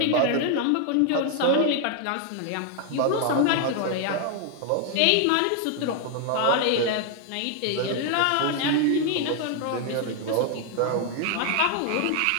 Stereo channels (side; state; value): both; different; correlation 0.00